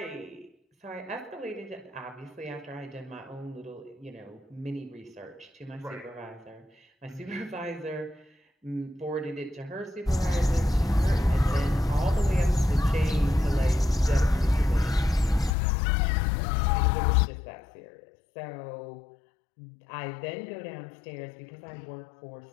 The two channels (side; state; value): right; drops out; at 15.5 s